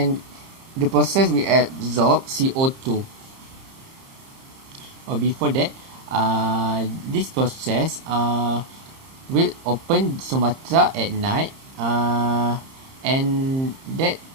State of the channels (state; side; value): late; left; 30 ms